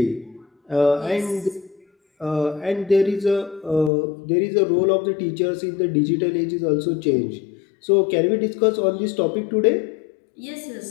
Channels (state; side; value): drops out; right; at 3.9 s